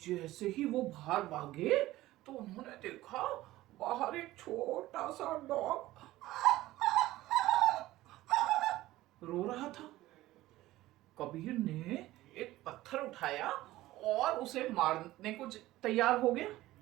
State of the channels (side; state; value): left; quieter; 16.6 dB